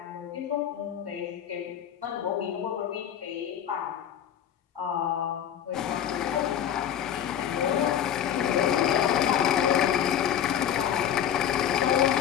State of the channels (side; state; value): right; quieter; 9.6 dB